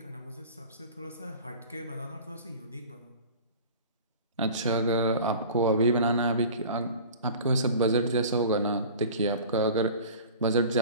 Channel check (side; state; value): both; inverted; correlation -0.41